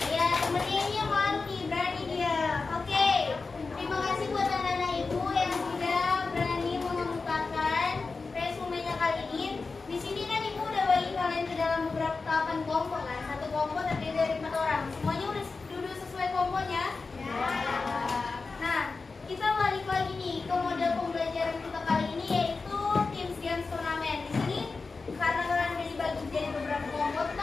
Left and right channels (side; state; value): right; quieter; 4.2 dB